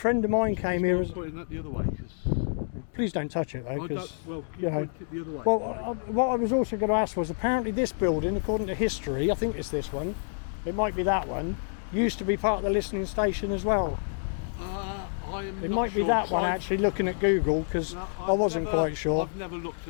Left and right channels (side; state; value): right; silent; digital silence